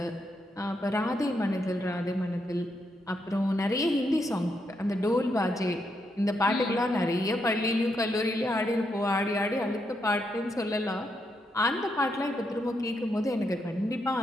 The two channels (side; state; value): both; normal; correlation 0.80